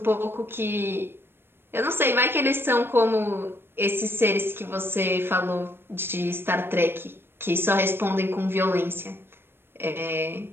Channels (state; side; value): late; left; 0.11 ms